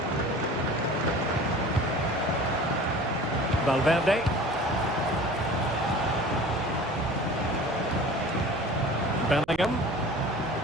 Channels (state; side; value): noise; right; hum, 22 dB below the sound